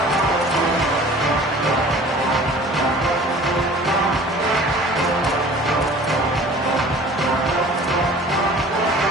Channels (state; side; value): normal; both; correlation 0.46